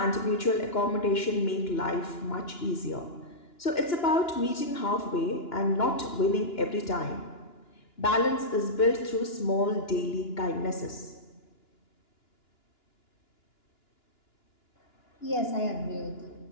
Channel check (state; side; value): late; right; 2.9 ms